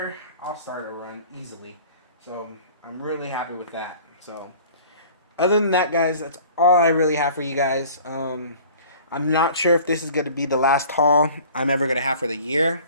I'll start a run easily. So I'm really happy with that. So other than that, guys, that's all I really have for you guys. I'm not sure if this is going to be the last haul I'm ever going to have for the year,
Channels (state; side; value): inverted; both; correlation -0.47